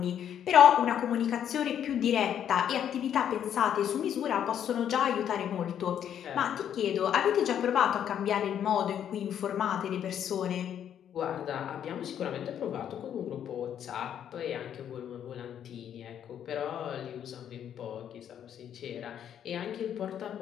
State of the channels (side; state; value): right; quieter; 9.5 dB